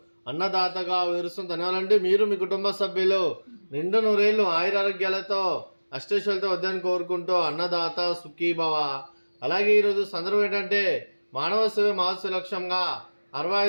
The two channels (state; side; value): inverted; both; correlation -1.00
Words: అన్నదాతగా వివరిస్తుంది. ధన్యవాదాలండి. మీరు మీ కుటుంబ సభ్యులు నిండు నూరేళ్లు ఆయురారోగ్యాలతో అష్టైశ్వర్యాలతో వద్దని కోరుకుంటూ అన్నదాత సుఖీభవ. అలాగే ఈరోజు సందర్భం ఏంటంటే మానవ సేవ మహోత్సవ లక్ష్యంగా